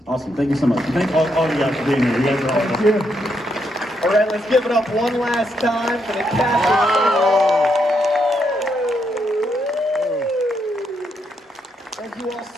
Awesome, thank you so much. Thank all of you guys for being here. You guys are awesome. Thank you. All right, let's give it up one last time for the cast. Thank you all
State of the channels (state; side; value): normal; both; correlation 0.79